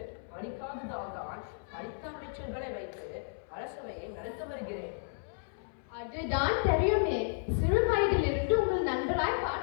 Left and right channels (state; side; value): silent; right; 56 dB below the other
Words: படிக்காததால் தான் படித்த அமைச்சர்களை வைத்து அரசவையை நடத்த வருகிறேன். அதுதான் தெரியுமே. சிறு வயதிலிருந்து உங்கள் நண்பராய்